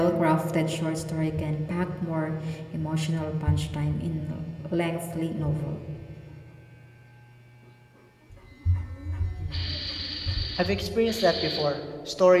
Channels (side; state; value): both; identical; correlation 1.00